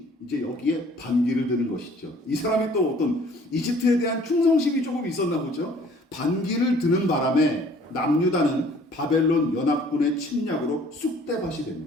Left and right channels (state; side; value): normal; both; correlation 0.55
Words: 이제 여기에 반기를 드는 것이죠. 이 사람이 또 어떤 이집트에 대한 충성심이 조금 있었나 보죠. 반기를 드는 바람에 남유다는 바벨론 연합군의 침략으로 쑥대밭이